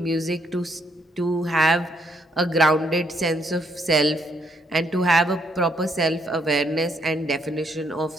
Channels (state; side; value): normal; both; correlation 0.73